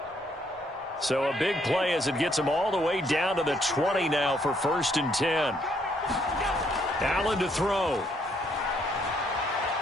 So a big play as it gets them all the way down to the 20 now for 1st and 10. Allen to throw.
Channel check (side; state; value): both; normal; correlation 0.70